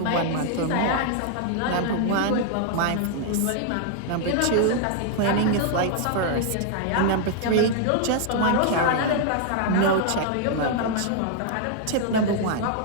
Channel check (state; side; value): different; both; correlation 0.00